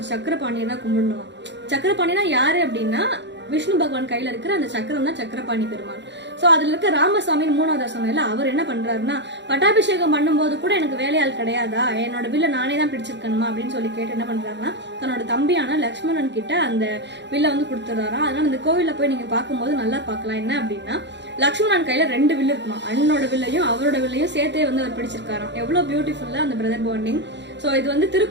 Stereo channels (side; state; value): left; late; 0.52 ms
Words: சக்கரபாணியை தான் கும்பிடணும். சக்கரபாணினா யாரு அப்படின்னா விஷ்ணு பகவான் கையில இருக்கிற அந்த சக்கரம் தான் சக்கரபாணி பெருமாள். சோ அதுல இருக்க ராமசாமின்னு 3வது சொன்னல, அவர் என்ன பண்றாருன்னா பட்டாபிஷேகம் பண்ணும்போது கூட எனக்கு வேலையாள் கிடையாதா, என்னோட வில்ல நானே தான் பிடிச்சிருக்கணுமா அப்படின்னு சொல்லி கேட்டு என்ன பண்றாருன்னா தன்னோட தம்பியான லக்ஷ்மணன் கிட்ட அந்த வில்ல வந்து கொடுத்துறாராம். அதனால இந்த கோவில்ல போய் நீங்க பார்க்கும்போது நல்லா பார்க்கலாம். என்ன அப்படின்னா லக்ஷ்மணன் கையில 2 வில்லு இருக்குமா, அண்ணனோட வில்லையும் அவரோட வில்லையும் சேர்த்தே வந்து அவர் பிடிச்சிருக்காராம். எவ்வளவு பியூட்டிஃபுல்லா அந்த பிரதர் பாண்டிங். ஸோ இது வந்து